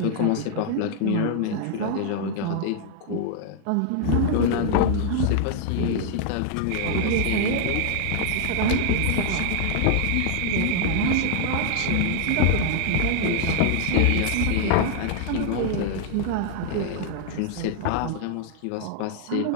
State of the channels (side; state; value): both; different; correlation 0.00